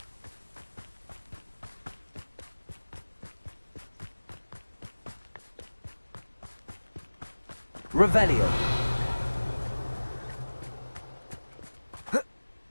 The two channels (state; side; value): inverted; both; correlation -1.00